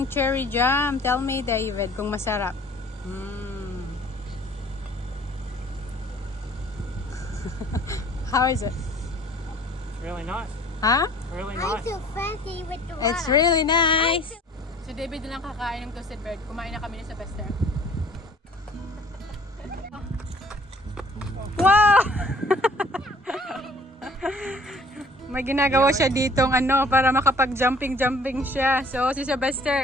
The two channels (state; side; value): normal; both; correlation 0.53